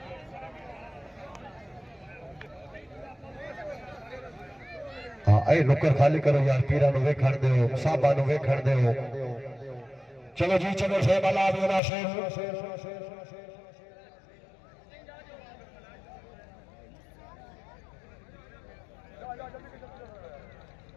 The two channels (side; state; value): right; drops out; at 11.8 s